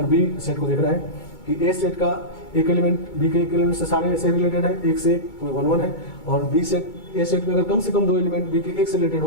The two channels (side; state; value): right; late; 2.2 ms